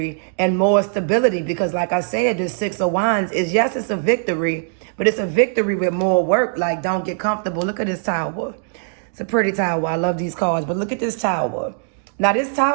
and more stability. Because like I said, the Six of Wands is, yes, it's a victory, but it's a victory with more work. Like, don't get comfortable. Look at this tower. It's a pretty tower. I love these cards, but look at this tower. Now, this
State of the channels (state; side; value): silent; left; digital silence